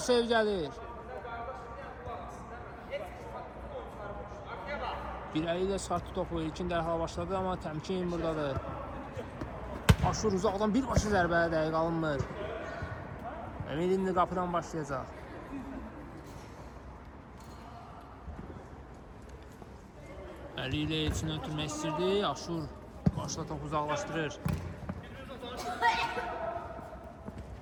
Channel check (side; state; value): both; identical; correlation 1.00